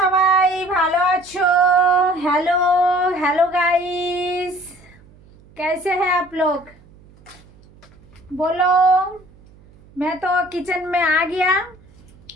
সবাই ভালো আছো? हेलो हेलो गाइस, कैसे हैं आप लोग? बोलो। मैं तो किचन में आ गया।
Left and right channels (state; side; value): noise; right; hum, 26 dB below the sound